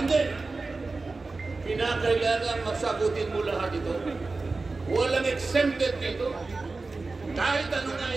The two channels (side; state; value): left; quieter; 3.7 dB